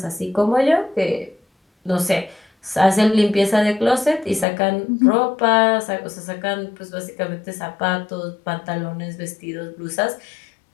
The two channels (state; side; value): drops out; right; at 4.5 s